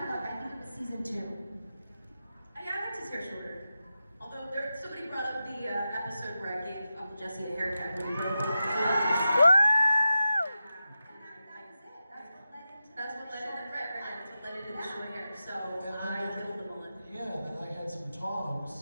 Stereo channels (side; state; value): both; inverted; correlation -0.91